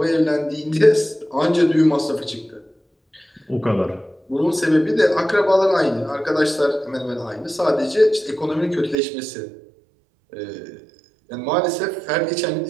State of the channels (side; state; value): left; drops out; at 9.0 s